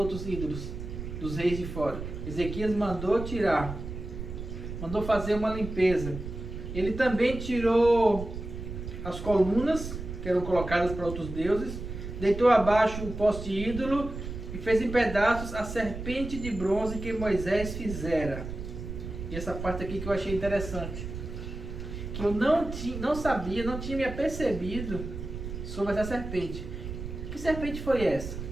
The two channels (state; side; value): noise; right; rumble, 8 dB below the sound